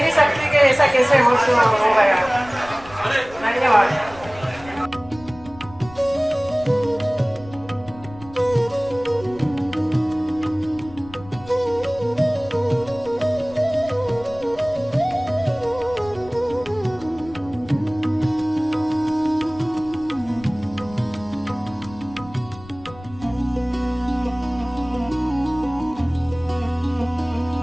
नहीं सकती कि ऐसा कैसे हो गया। धन्यवाद।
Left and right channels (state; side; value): noise; left; rumble, 19 dB below the sound